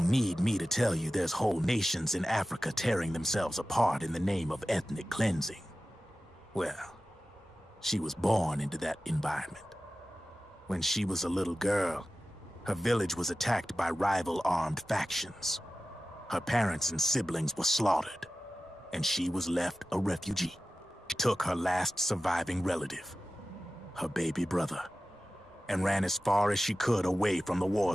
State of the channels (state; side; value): normal; both; correlation 0.94